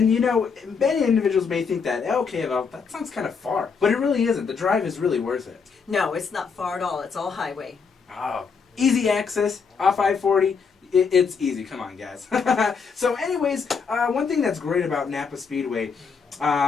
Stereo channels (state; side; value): quieter; right; 5.6 dB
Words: you know, many individuals may think that, okay, well, that sounds kind of far, but it really isn't. The drive is really worth it. No, it's not far at all. It's all highway. Oh, easy access off I-40. It's easy. Come on, guys. So anyways, one thing that's great about NAPA Speedway,